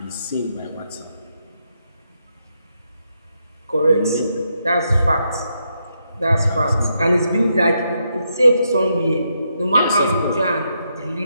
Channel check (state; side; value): inverted; both; correlation -0.81